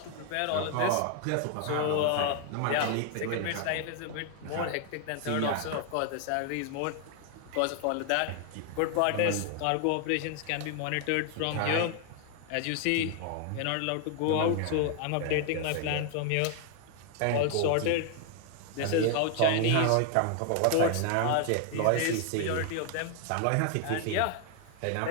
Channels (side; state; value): both; different; correlation 0.00